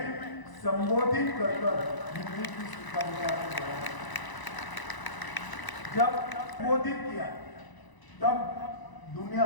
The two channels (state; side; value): late; right; 1.0 ms